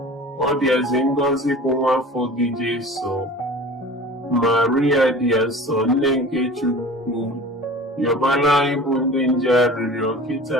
ọ dịazị ngọzi bụ nwa afọ gị Jesu. Maria dị asọ, nne nke Chukwu, yọbala anyị bụ ndị nje arịrịọ kịta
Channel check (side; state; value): both; normal; correlation 0.39